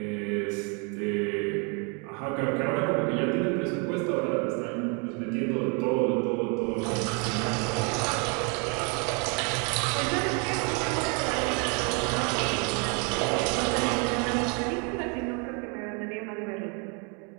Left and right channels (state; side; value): quieter; left; 34.7 dB